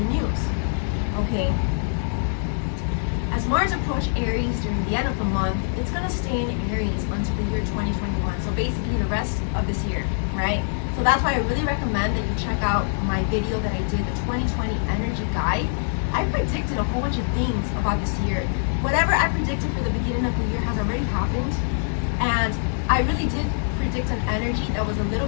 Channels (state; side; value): silent; right; digital silence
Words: the news, okay? As Mars approaches Aries during the end of the month, it's going to stay in Aries until the year 2021. So basically the rest of this year, right? So that's why I really recommend that you check out my video that I did, the 2020 Energy Guide. I predicted a whole bunch of things about this year. Whatever I predicted for the beginning of the year has already happened. And I really did predict an energy that was a little